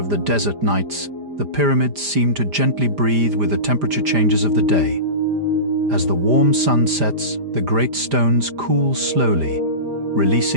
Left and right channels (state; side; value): late; left; 5.0 ms